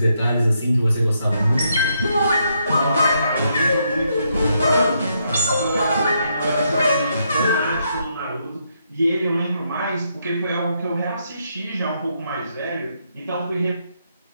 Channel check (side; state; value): both; inverted; correlation -0.77